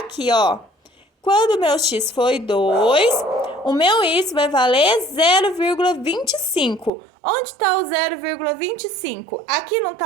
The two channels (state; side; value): drops out; left; at 6.9 s